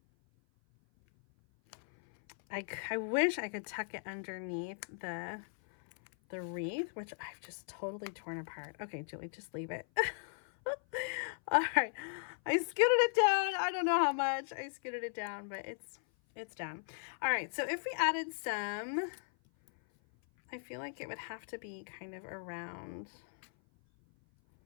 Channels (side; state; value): right; silent; 53 dB below the other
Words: I wish I could tuck it underneath the wreath, which I've just totally torn apart. Okay, Julie, just leave it. All right, I scooted it down. I don't know how much I scooted it down, but it's down. All right, so if we added some, I feel like it would have to be kind of around.